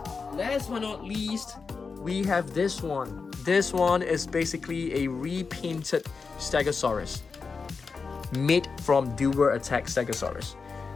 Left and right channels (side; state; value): right; quieter; 4.9 dB